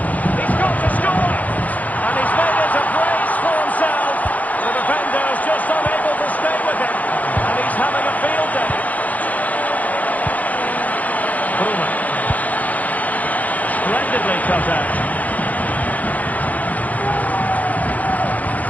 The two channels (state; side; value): late; right; 0.077 ms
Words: He's got to score! And he's made it a brace for himself. The defender's just unable to stay with him. And he's having a field day. Bruma. Splendidly cut out.